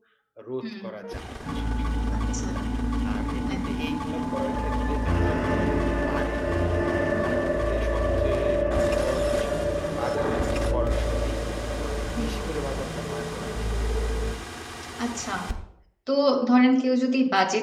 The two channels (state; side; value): identical; both; correlation 1.00